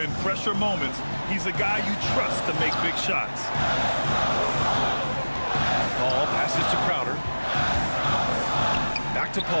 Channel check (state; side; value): inverted; both; correlation -1.00